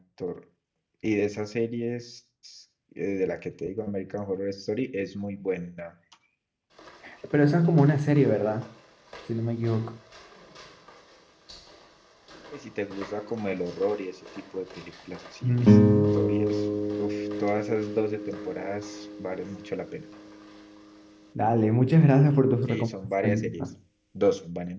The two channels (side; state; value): both; identical; correlation 1.00